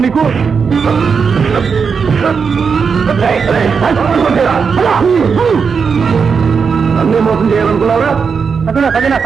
నీకు? అన్నీ మోసం చేయాలనుకున్నారా?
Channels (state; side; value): quieter; left; 5.8 dB